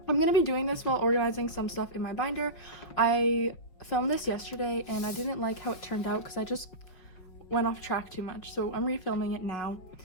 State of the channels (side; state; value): right; late; 5.3 ms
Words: I'm going to be doing this while organizing some stuff in my binder. I filmed this yesterday and I didn't like how it turned out because I just went off track too much, so I'm refilming it now.